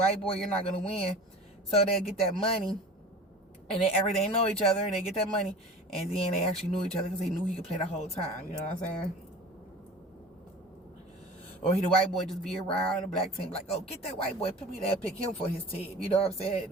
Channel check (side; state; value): both; normal; correlation 0.38